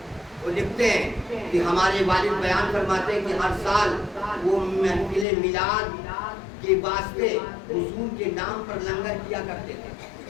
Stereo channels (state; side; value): drops out; right; at 5.2 s